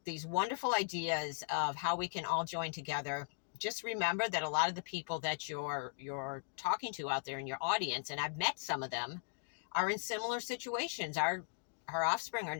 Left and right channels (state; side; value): silent; right; digital silence